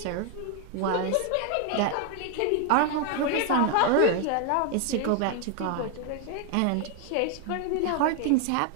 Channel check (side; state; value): both; different; correlation 0.01